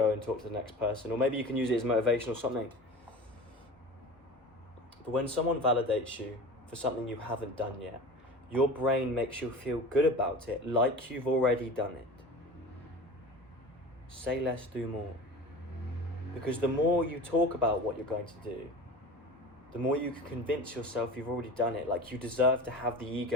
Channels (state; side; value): normal; both; correlation 0.35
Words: and talk to the next person. Or maybe you can use it as motivation or something. But when someone validates you for something you haven't done yet, your brain makes you feel good about it, like you've already done it. Say less, do more. Because the more you talk about what you're going to do, the more you can convince yourself you've already done it. Like you deserve to have the